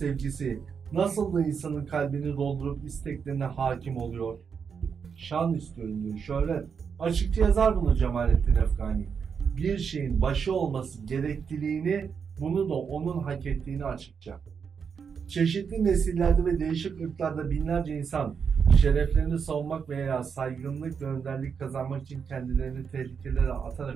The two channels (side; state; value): left; quieter; 6.4 dB